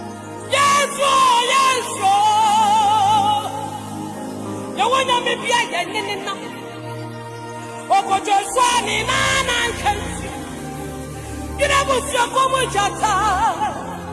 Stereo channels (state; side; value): identical; both; correlation 1.00